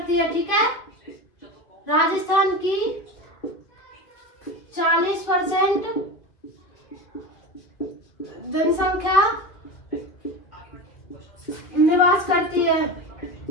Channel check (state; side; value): late; right; 2.3 ms